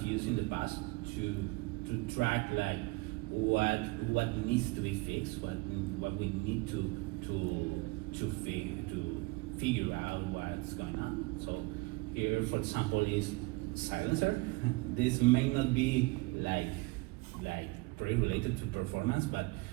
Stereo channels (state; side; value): quieter; left; 24.1 dB